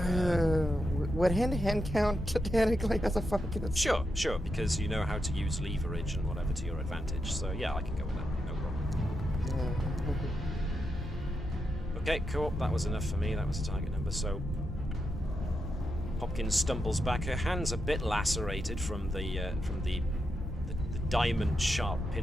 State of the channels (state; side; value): normal; both; correlation 0.86